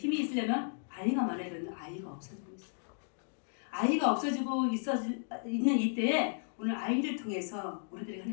있으려면 아이가 많아야 되는데 아이가 없어지고 있어요. 아이가 없어지고 있는 이때에 오늘 아이를 통해서 우리들이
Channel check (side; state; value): right; silent; digital silence